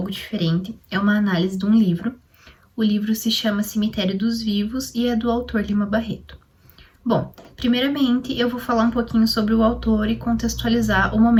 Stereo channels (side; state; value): both; identical; correlation 1.00